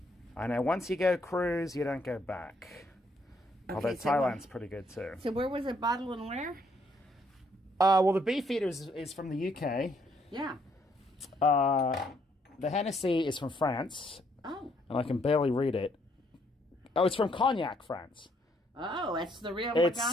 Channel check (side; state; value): both; normal; correlation 0.70